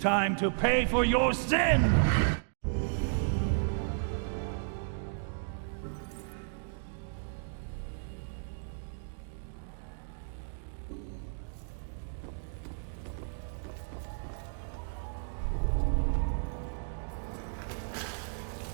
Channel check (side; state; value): left; silent; digital silence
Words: to pay for your sin!